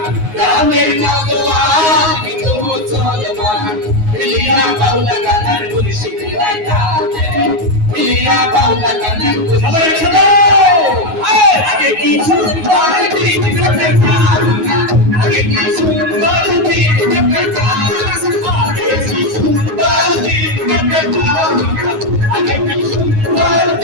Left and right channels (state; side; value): late; left; 9.5 ms